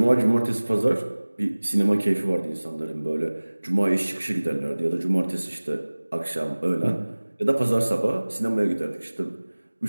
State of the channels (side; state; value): both; inverted; correlation -1.00